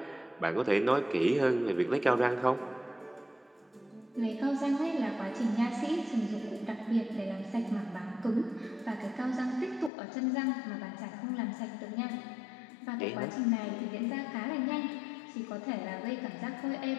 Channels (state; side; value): drops out; right; at 9.9 s